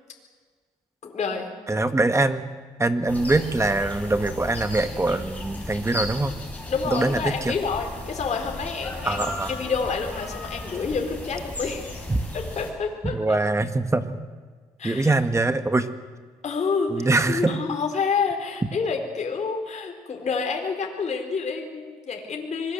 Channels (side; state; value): both; normal; correlation 0.68